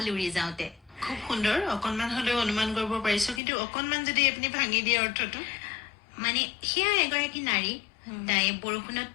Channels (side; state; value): right; drops out; at 3.4 s